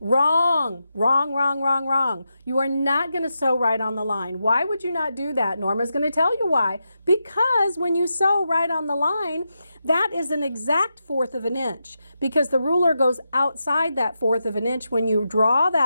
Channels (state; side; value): inverted; both; correlation -0.87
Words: Wrong, wrong, wrong, wrong, wrong. You are not going to sew right on the line. Why would you not do that? Norma's going to tell you why. Because when you sew right on the line, that is an exact 1/4 of an inch. Because the ruler goes outside that 1/4 of an inch. When you draw